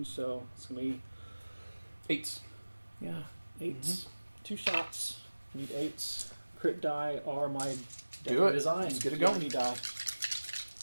so it's going to be 8s. Yeah, 8s. 2 shots. Need 8s. Crit die are my design. Let's get it going. Die.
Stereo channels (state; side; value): inverted; both; correlation -1.00